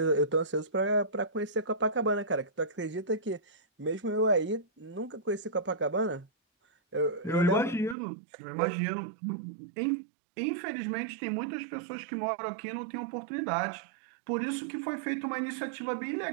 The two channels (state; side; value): drops out; left; at 8.0 s